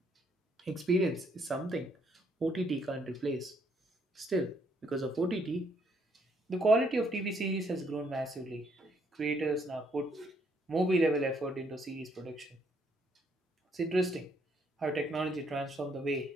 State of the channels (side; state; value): both; normal; correlation 0.70